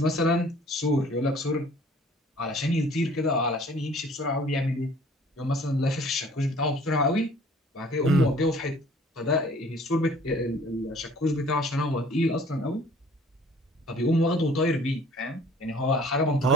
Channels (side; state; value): both; normal; correlation 0.52